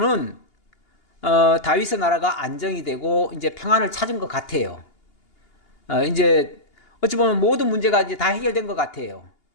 다윗의 나라가 안정이 되고 이제 평안을 찾은 것 같아요. 이제 어찌 보면 모든 문제가 이제 다 해결된 것 같아요.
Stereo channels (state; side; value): late; right; 2.8 ms